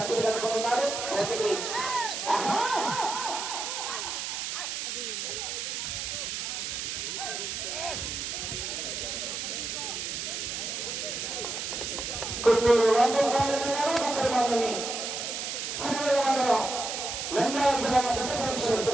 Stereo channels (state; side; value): noise; right; hiss, 4 dB below the sound